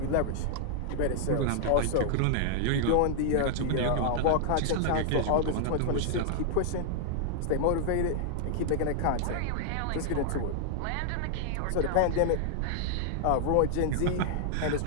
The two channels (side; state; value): both; different; correlation -0.01